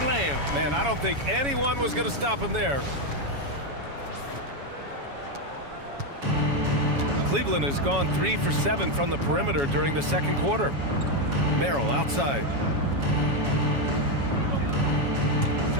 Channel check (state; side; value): late; left; 7.2 ms